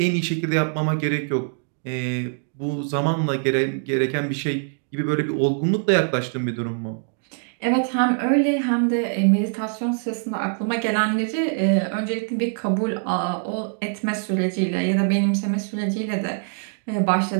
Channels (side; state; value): left; silent; 63 dB below the other